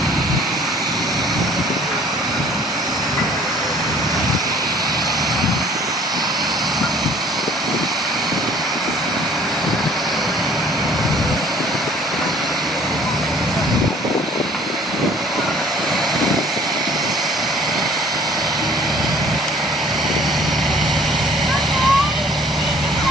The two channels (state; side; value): normal; both; correlation 0.54